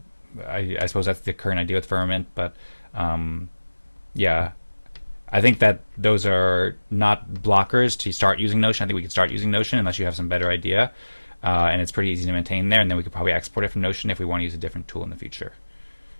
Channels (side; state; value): both; inverted; correlation -1.00